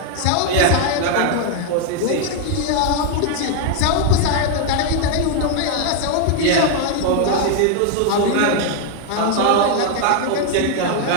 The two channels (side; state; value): both; different; correlation 0.00